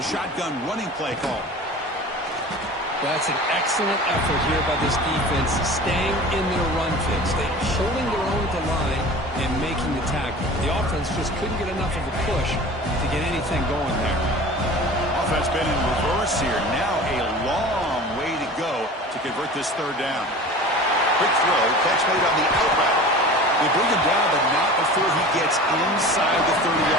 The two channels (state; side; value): normal; both; correlation 0.39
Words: shotgun running play call. That's an excellent effort here by this defense, staying in their run fix. They're holding their own at the line and making the tackle. The offense just couldn't get enough of a push to get anything going there. Offense been in reverse here. Now a long way to go to convert this 3rd down. Quick throw, catch made on the out route. They bring him down, but not before he gets inside the